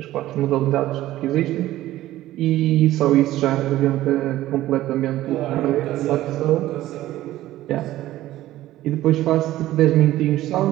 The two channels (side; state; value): left; quieter; 15.0 dB